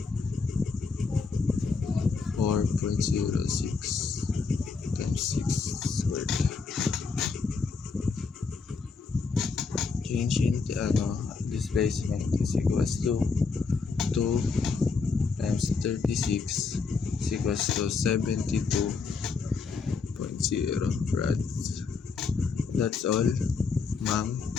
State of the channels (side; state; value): right; quieter; 4.8 dB